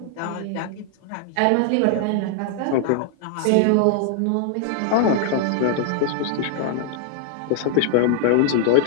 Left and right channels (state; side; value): different; both; correlation 0.00